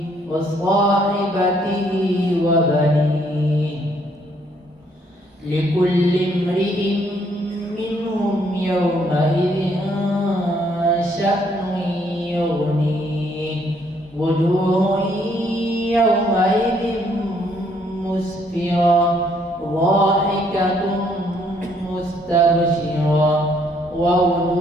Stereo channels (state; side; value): normal; both; correlation 0.68